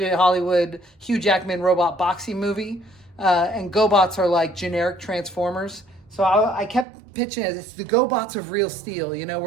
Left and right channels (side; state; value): left; drops out; at 6.9 s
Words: Hollywood, Hugh Jackman robot boxing movie, and GoBots are like generic Transformers. So I kept pitching it. It's the GoBots of Real Steel. You know,